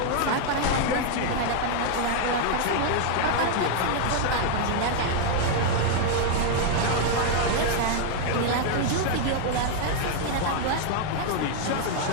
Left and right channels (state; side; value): different; both; correlation 0.00